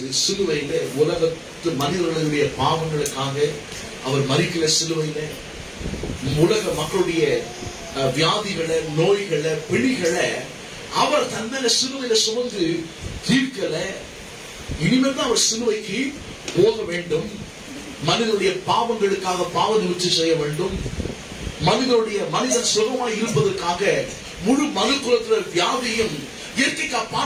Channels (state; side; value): identical; both; correlation 1.00